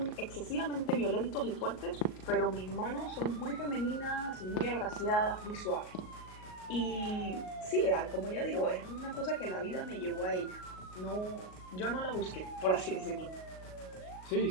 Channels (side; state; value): right; late; 38 ms